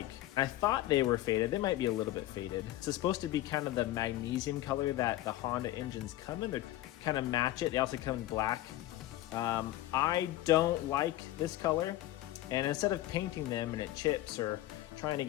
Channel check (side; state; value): right; quieter; 15.1 dB